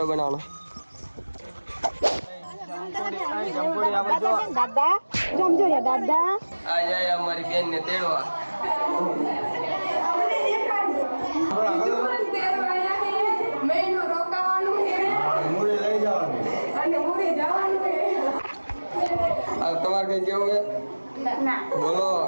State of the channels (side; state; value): both; inverted; correlation -1.00